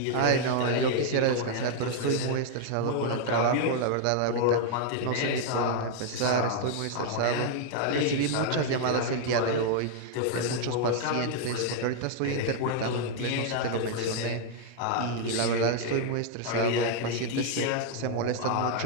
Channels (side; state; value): both; different; correlation 0.00